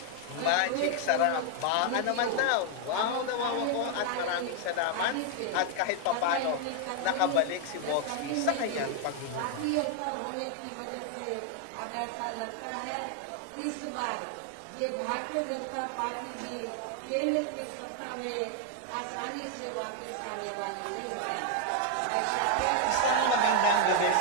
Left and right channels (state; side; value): different; both; correlation 0.00